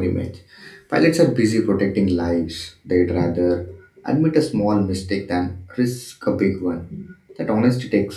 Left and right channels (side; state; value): both; identical; correlation 1.00